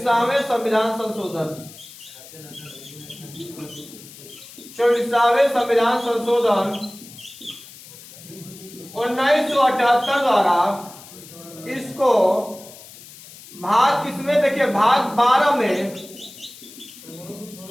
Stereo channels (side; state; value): left; noise; hiss, 18 dB below the sound